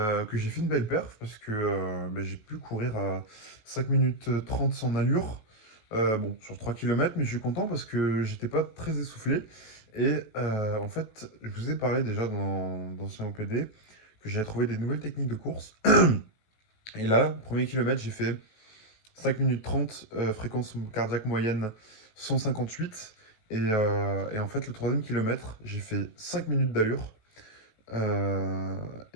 j'ai fait une belle perf parce que j'ai pu courir à 5 minutes 30 sans allure. Bon, sur 3 km, mais je suis content parce que j'étais pas très essoufflé. Et en fait, je vous ai parlé déjà dans ce OPD que j'avais trouvé des nouvelles techniques de course. Et là, premier kilomètre, j'ai fait 5 minutes 30, fréquence cardiaque moyenne 158. Et en fait, le troisième kilomètre, j'ai fait 5 minutes d'allure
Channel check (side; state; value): right; late; 19 ms